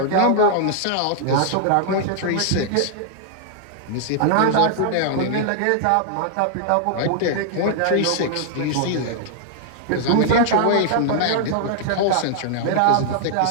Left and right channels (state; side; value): different; both; correlation -0.01